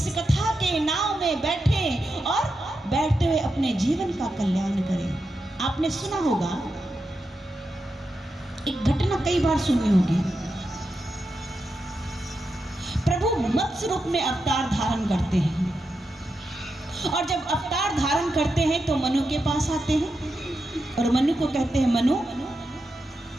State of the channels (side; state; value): both; normal; correlation 0.87